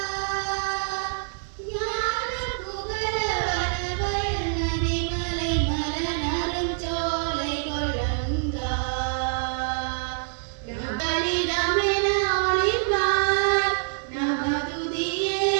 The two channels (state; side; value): silent; left; 61 dB below the other